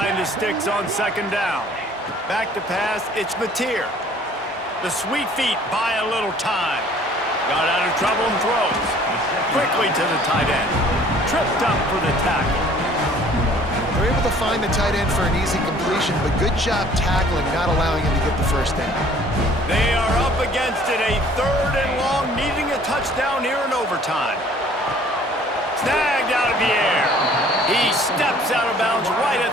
the sticks on 2nd down. Back to pass, it's Mateer. The sweet feet buy a little time. Got out of trouble and throws. Quickly to the tight end. Tripped up for the tackle. They're able to find the tight end for an easy completion, but good job tackling, not allowing him to get the 1st down. They are up against it, a 3rd and long, needing a touchdown here in overtime. Snagged out of the air. He steps out of bounds right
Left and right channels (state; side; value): normal; both; correlation 0.55